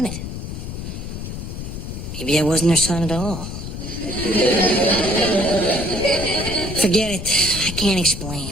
Maybe I wasn't her son at all. Forget it. I can't explain.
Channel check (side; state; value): left; noise; rumble, 7 dB below the sound